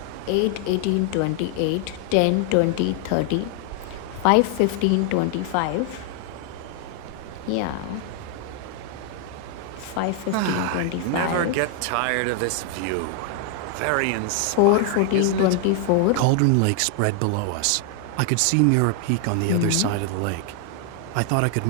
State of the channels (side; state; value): both; different; correlation 0.00